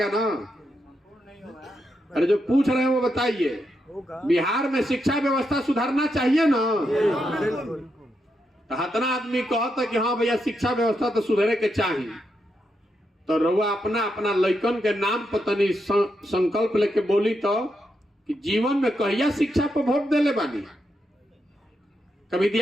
ना? अरे जो पूछ रहे हैं वो बताइए, बिहार में शिक्षा व्यवस्था सुधारना चाहिए ना? तो हतना आदमी कहता कि हाँ भैया शिक्षा व्यवस्था तो सुधरे के चाहिए, तो रउआ अपना अपना लइकन के नाम पर तनी संकल्प लेके बोली तो कि जीवन में कहिया शिक्षा पर वोट देले बानी? कभी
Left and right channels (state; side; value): normal; both; correlation 0.83